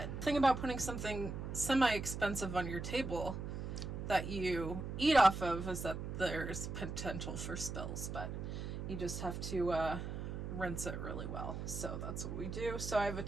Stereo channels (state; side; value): noise; right; hum, 5 dB below the sound